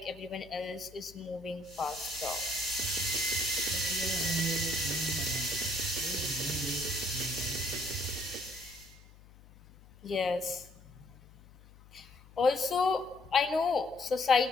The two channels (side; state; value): left; noise; hum, 23 dB below the sound